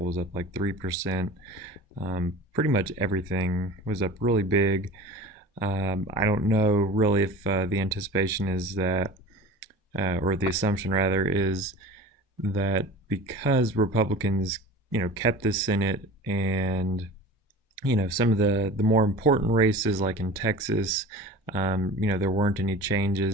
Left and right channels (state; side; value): normal; both; correlation 0.38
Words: was up like 3%. Pretty much everything was up really big. I don't know really if the anticipation is that, or the assumption rather, is that because Republicans, kept the Senate and some of the more important races like in Texas, there weren't any